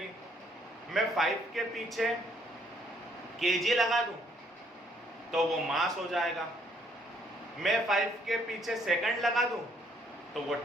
मैं 5 के पीछे केजी लगा दूं तो वो मास हो जाएगा। मैं 5 के पीछे सेकंड लगा दूं तो वो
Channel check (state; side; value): normal; both; correlation 0.66